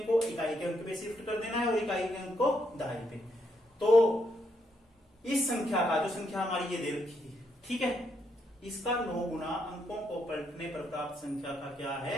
को इकाई के अंक पे शिफ्ट कर देना है और इकाई के अंक को दाई पे। तो इस संख्या का, जो संख्या हमारी ये दे रखी है, ठीक है, इसका 9 गुना अंकों को पलटने पर प्राप्त संख्या का क्या है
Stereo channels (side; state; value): both; normal; correlation 0.77